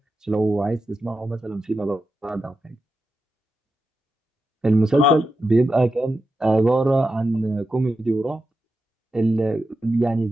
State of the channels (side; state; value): both; normal; correlation 0.88